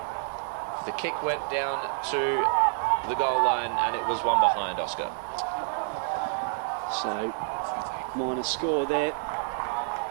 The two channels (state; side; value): silent; left; digital silence